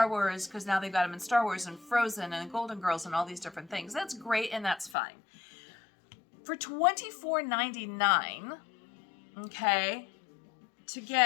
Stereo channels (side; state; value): right; drops out; at 5.0 s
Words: Wars, because now they've got them in Star Wars and Frozen and Golden Girls and all these different things, that's great and that's fine. For $24.99, okay, to